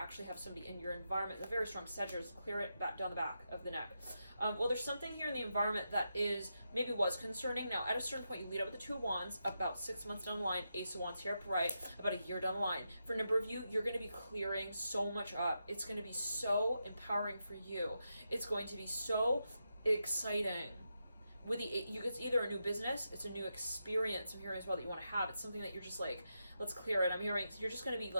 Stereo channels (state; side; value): inverted; both; correlation -0.86